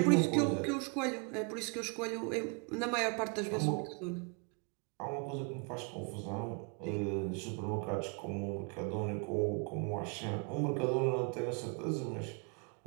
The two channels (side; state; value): left; quieter; 35.8 dB